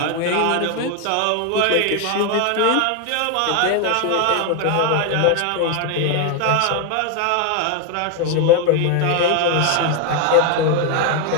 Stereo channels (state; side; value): different; both; correlation 0.01